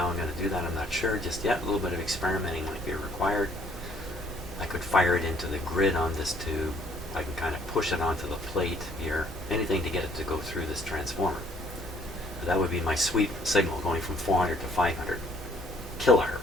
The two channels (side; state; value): both; normal; correlation 0.62